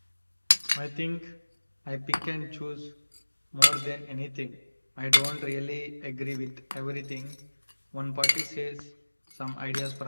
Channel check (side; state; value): both; inverted; correlation -1.00